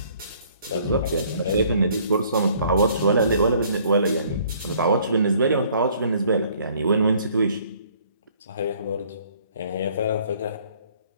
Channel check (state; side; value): inverted; both; correlation -0.59